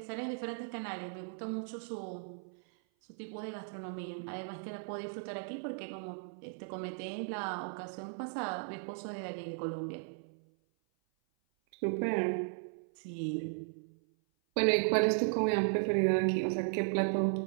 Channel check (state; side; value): silent; left; 54 dB below the other